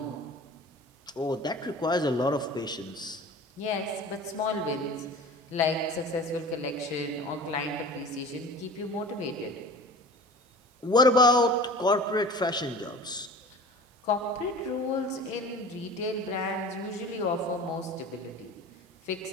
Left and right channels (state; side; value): normal; both; correlation 0.40